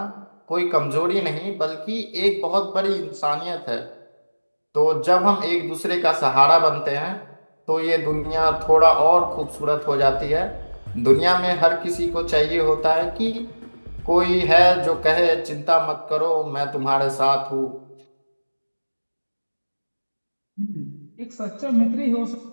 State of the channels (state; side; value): inverted; both; correlation -1.00